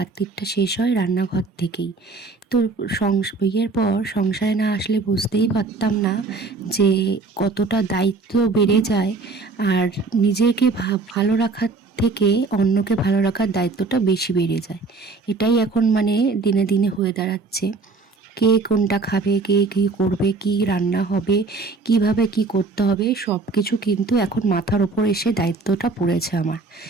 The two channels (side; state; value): left; quieter; 3.9 dB